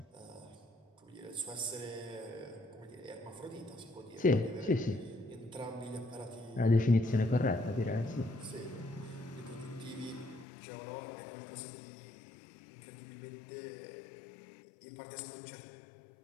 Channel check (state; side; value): drops out; right; at 10.5 s